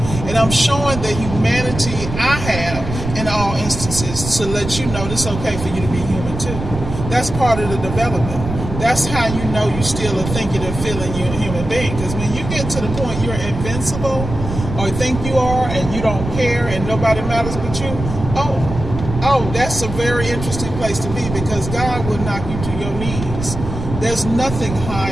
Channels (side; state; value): right; noise; rumble, 7 dB below the sound